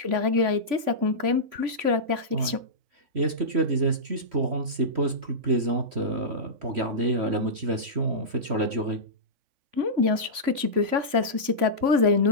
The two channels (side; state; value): left; late; 3.5 ms